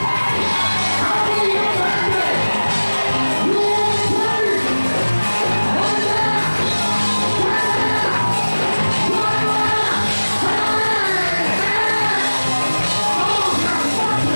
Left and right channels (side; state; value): both; inverted; correlation -1.00